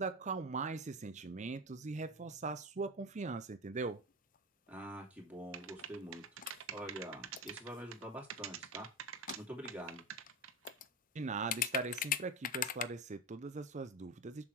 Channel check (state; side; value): normal; both; correlation 0.21